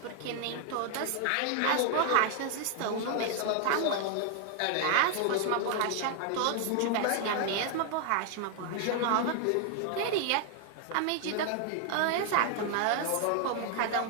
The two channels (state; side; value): different; both; correlation 0.00